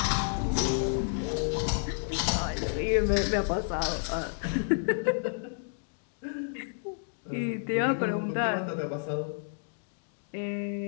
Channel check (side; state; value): right; silent; digital silence